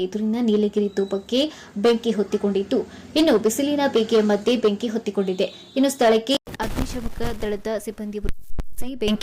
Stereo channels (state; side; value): identical; both; correlation 1.00